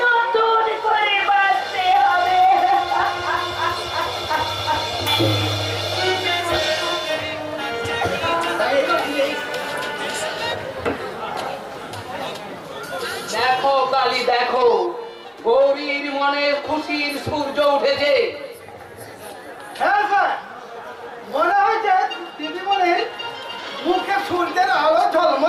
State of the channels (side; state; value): both; identical; correlation 1.00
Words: নতুন করে বাঁচতে হবে। দেখো কালী, দেখো গৌরীর মনে খুশির সূর্য উঠেছে। হ্যাঁ স্যার, মনে হয়েছে দিদিমণির মুখে সূর্যের আলো